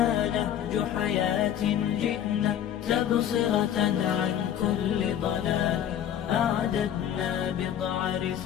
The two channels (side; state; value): right; quieter; 10.1 dB